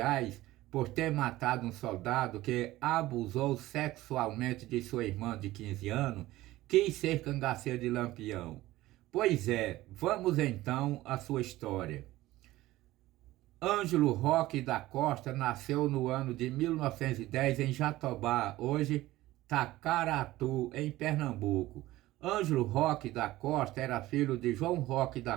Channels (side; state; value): left; quieter; 16.9 dB